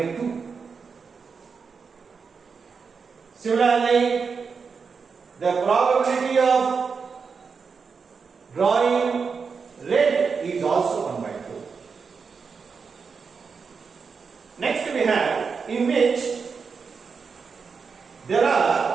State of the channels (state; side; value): quieter; left; 5.4 dB